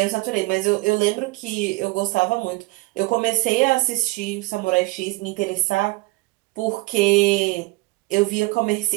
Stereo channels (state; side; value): quieter; left; 21.8 dB